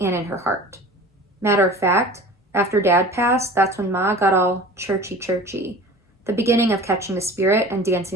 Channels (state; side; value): normal; both; correlation 0.40